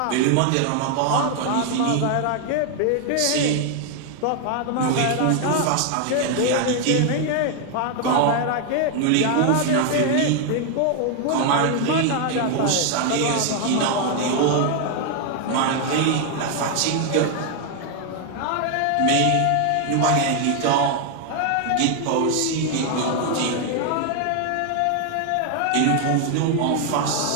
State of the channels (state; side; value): different; both; correlation 0.00